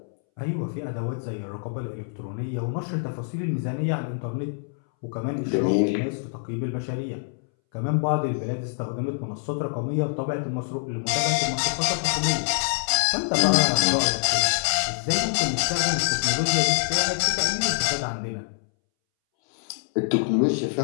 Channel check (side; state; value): right; silent; 61 dB below the other